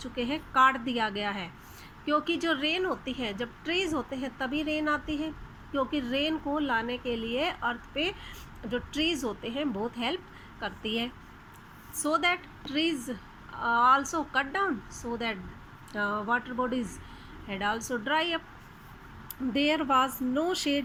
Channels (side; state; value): both; identical; correlation 1.00